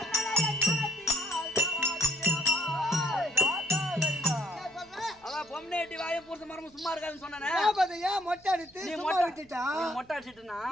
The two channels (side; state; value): right; noise; hum, 29 dB below the sound